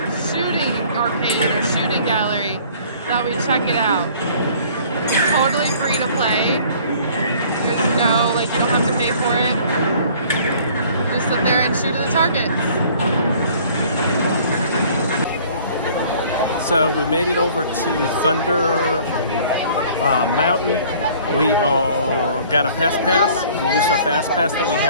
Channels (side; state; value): both; inverted; correlation -0.53